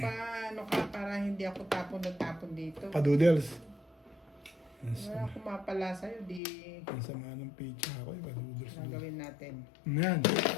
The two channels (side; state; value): right; drops out; at 6.4 s